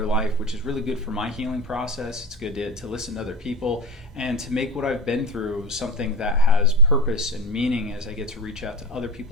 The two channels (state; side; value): normal; both; correlation 0.29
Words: life, which is really good for my healing process. It's good to listen to other people and to make what I've been through something that has purpose and meaning as I get to reach out to other